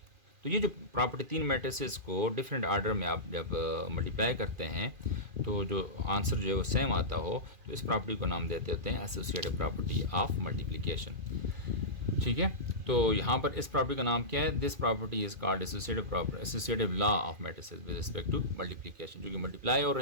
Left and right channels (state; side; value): late; left; 2.4 ms